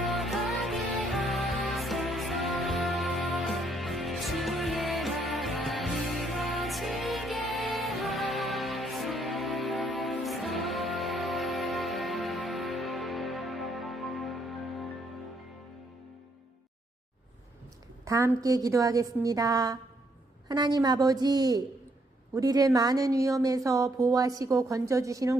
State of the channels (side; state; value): both; normal; correlation 0.71